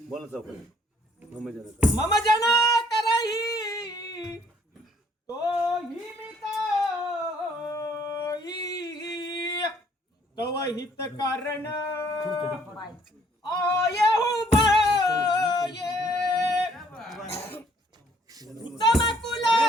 बोला चौक मम जन करही तो ही तव हित कारण आये उभा ये उत्तम कुल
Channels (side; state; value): both; normal; correlation 0.62